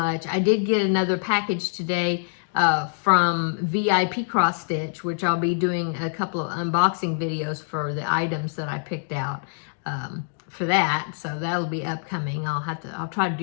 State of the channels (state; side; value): silent; right; digital silence